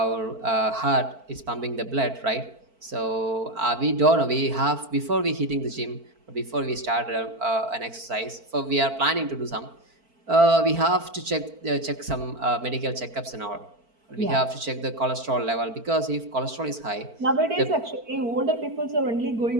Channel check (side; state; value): left; late; 4.5 ms